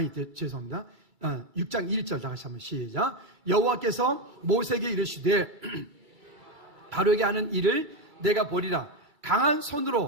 죄송합니다. 6장 1절 다 같이 한번 시작. 여호와께서 모세에게 이르시되 바로에게 하는 일을 내가 보리라. 강한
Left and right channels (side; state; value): left; late; 2.3 ms